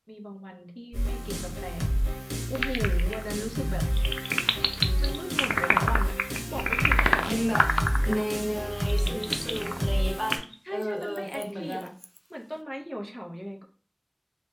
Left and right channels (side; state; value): both; identical; correlation 1.00